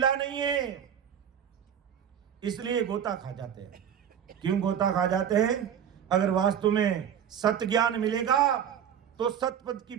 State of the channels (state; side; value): quieter; left; 8.8 dB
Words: नहीं है, इसलिए गोता खा जाते हैं। क्यों गोता खा जाते हैं? अगर वास्तव में सत्य ज्ञान मिलेगा तो सतपद की